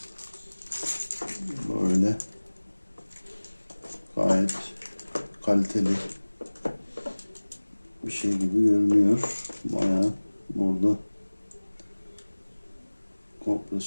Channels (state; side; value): inverted; both; correlation -1.00